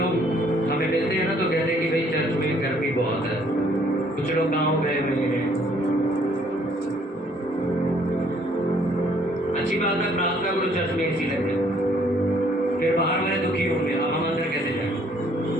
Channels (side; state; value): both; normal; correlation 0.63